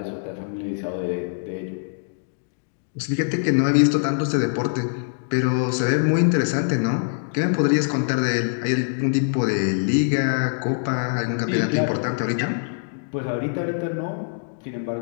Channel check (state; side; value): silent; right; digital silence